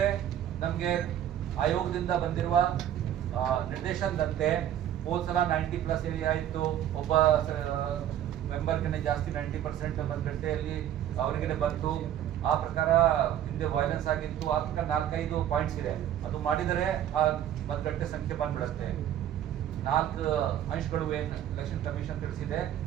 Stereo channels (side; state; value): left; quieter; 11.0 dB